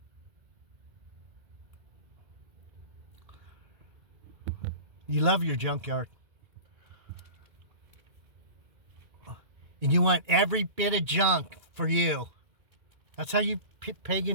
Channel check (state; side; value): late; left; 2.2 ms